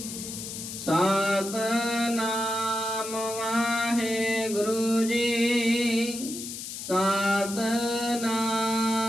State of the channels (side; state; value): left; noise; hiss, 8 dB below the sound